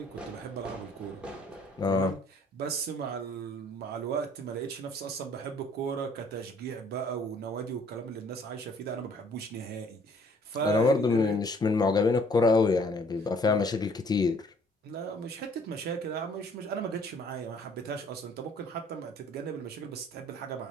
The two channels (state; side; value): normal; both; correlation 0.59